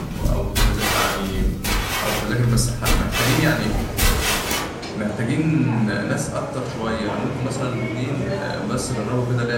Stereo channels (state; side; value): identical; both; correlation 1.00